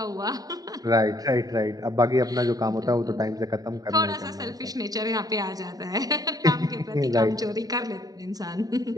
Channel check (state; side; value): late; left; 0.18 ms